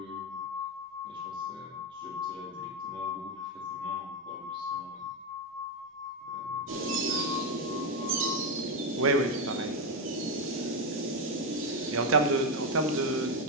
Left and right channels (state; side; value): normal; both; correlation 0.08